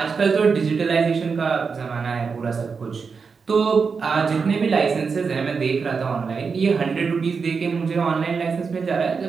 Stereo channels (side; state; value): left; quieter; 5.3 dB